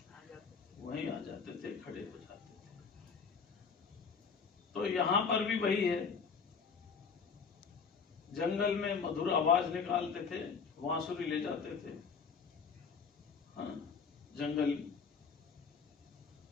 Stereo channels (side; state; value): right; quieter; 5.7 dB